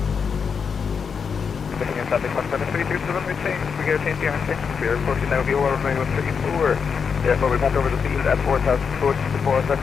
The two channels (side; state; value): right; quieter; 6.2 dB